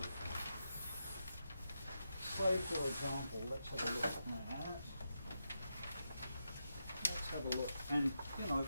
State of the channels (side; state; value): both; inverted; correlation -0.86